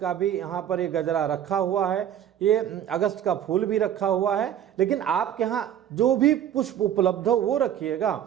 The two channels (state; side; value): quieter; left; 10.2 dB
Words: भी यहाँ पर ये गजरा रखा हुआ है। ये अगस्त का फूल भी रखा हुआ है। लेकिन आपके यहाँ जो भी पुष्प उपलब्ध हो वो रखिएगा।